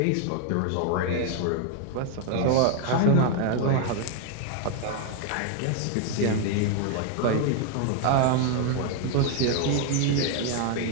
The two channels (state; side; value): different; both; correlation 0.00